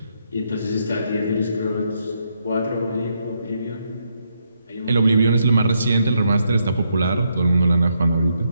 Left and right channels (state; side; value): inverted; both; correlation -0.78